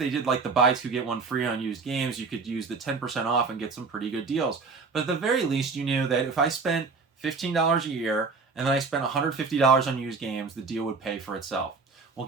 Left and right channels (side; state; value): left; quieter; 4.5 dB